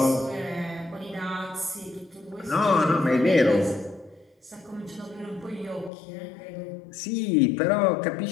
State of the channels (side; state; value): right; drops out; at 5.9 s